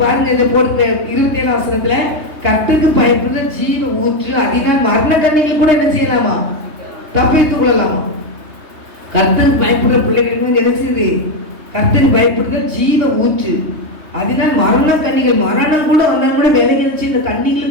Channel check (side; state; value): left; late; 3.2 ms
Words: பாருங்க இந்த போட்டு 27 வசனத்துல கர்த்தருக்கு பயப்படுற ஜீவ ஊற்று, அதனால் மரண கண்ணிகள் கூட என்ன செய்யலாமா? தப்பித்துக் கொள்ளலாமா? கர்த்தருக்கு பயப்படுற பிள்ளைகளுக்கு என்ன செய்யுது? கர்த்தருக்கு பயப்படுற ஜீவ ஊற்று, அதனால் மரண கண்ணிகள், மரணம் கூட வந்தாலும் கூட விலகி வச்சு இந்த